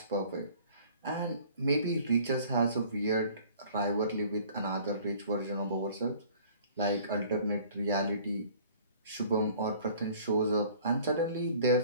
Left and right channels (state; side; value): inverted; both; correlation -0.51